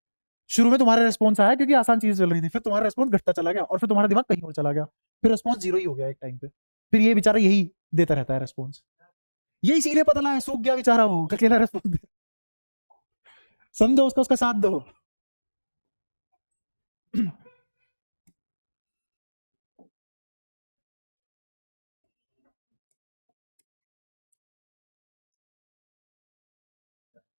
शुरू में तुम्हारा रिस्पॉन्स आया क्योंकि आसान चीज चल रही थी, फिर तुम्हारा रिस्पॉन्स घटता चला गया और फिर तुम्हारा दिमाग कहीं और चला गया, फिर रिस्पॉन्स जीरो ही हो गया एक टाइम पे। फिर ये बेचारा यही देता रहता है रिस्पॉन्स, ये इसीलिए पता है सूख गया बेचारा वो, अकेला रिस्पॉन्स समझो, उसका साथ दो।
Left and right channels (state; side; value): inverted; both; correlation -1.00